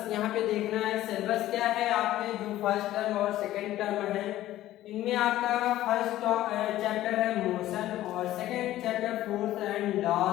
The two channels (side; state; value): right; quieter; 14.4 dB